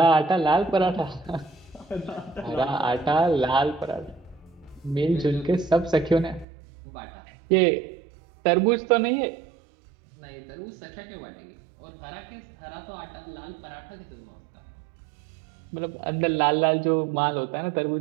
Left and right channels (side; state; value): left; drops out; at 6.5 s